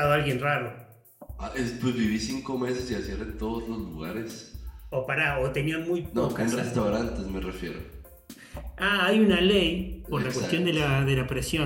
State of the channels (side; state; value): both; identical; correlation 1.00